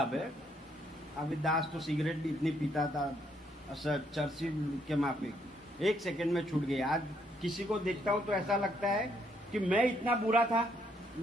है। अभी दास तो सिगरेट भी इतनी पीता था, चर्ची के माफिक, 1 सेकंड में छूट गई। आज किसी को देखता हूँ तो ऐसा लगता है कि मैं इतना बुरा था,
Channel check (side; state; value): both; normal; correlation 0.72